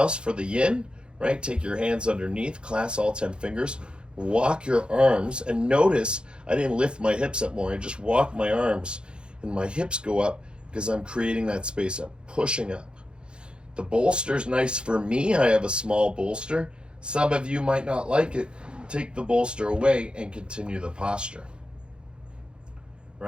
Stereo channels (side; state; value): left; late; 0.053 ms